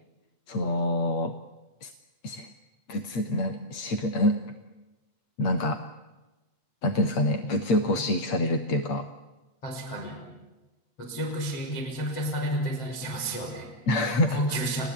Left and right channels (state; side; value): late; right; 8.5 ms